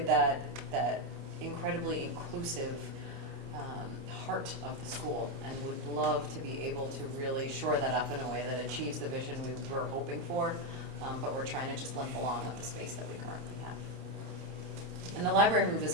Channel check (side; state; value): left; late; 29 ms